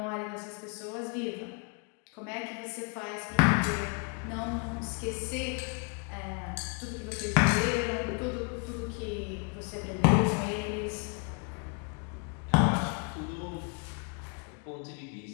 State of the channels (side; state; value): right; quieter; 35.0 dB